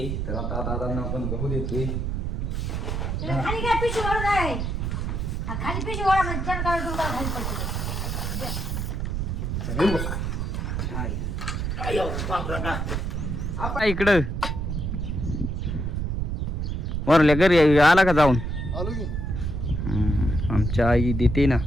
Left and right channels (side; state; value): right; noise; rumble, 2 dB below the sound